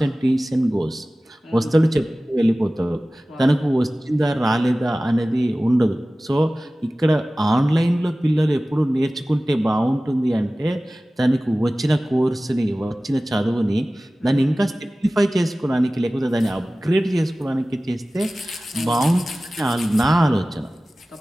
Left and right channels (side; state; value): both; normal; correlation 0.97